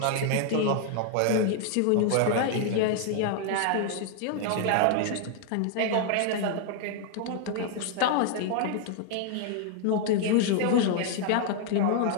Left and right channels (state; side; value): different; both; correlation 0.00